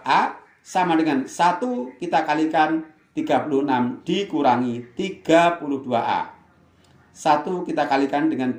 sama dengan 1 kita kalikan 36 dikurangi 32A. 1 kita kalikan dengan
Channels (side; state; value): both; identical; correlation 1.00